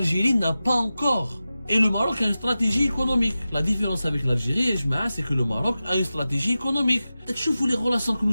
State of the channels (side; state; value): both; inverted; correlation -0.94